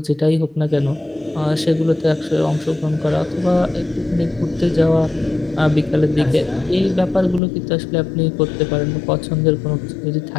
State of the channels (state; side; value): drops out; right; at 7.4 s